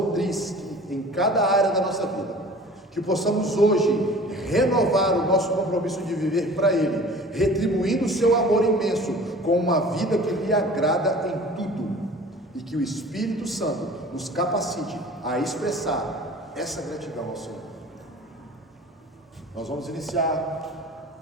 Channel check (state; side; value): normal; both; correlation 0.44